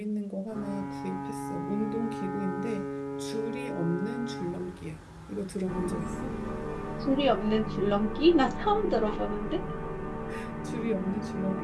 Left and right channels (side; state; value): both; identical; correlation 1.00